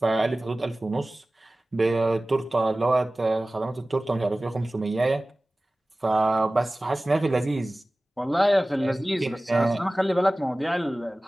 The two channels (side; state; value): both; normal; correlation 0.98